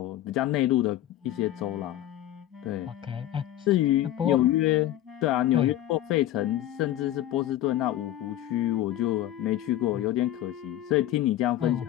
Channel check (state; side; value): quieter; right; 13.3 dB